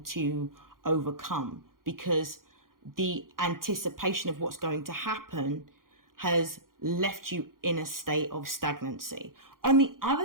to overcome because the anticipation of what's going to happen has left you in a state of stagnancy. On the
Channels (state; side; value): late; left; 0.91 ms